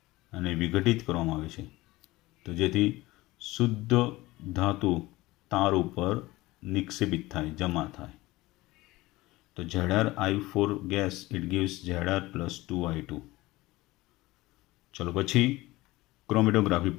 અને વિઘટિત કરવામાં આવે છે, તો જેથી શુદ્ધ ધાતુ તાર ઉપર નિક્ષેપિત થાય, જમા થાય. તો Zri4 gas it gives Zr + 2I2. ચલો પછી ક્રોમેટોગ્રાફી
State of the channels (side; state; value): right; quieter; 19.4 dB